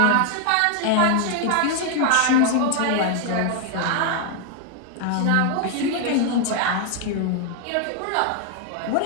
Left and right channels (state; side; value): different; both; correlation 0.00